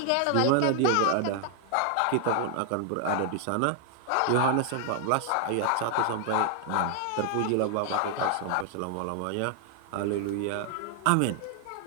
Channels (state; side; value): different; both; correlation 0.00